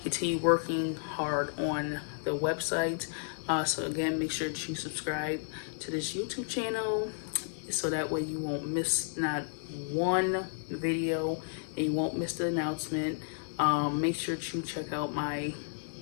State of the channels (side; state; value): right; silent; digital silence